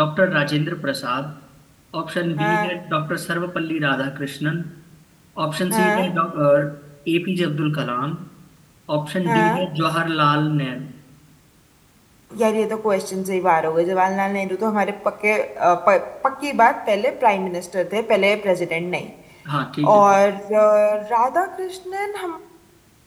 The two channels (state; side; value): identical; both; correlation 1.00